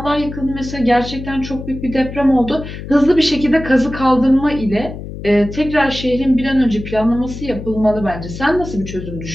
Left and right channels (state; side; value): noise; left; hum, 10 dB below the sound